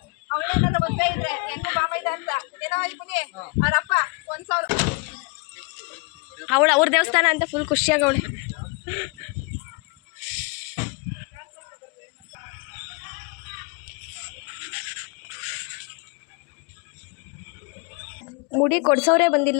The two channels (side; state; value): right; quieter; 32.0 dB